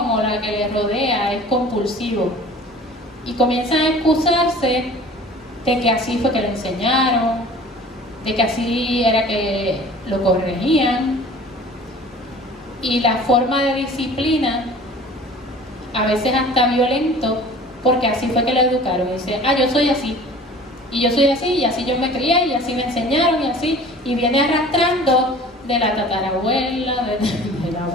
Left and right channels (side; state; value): both; normal; correlation 0.45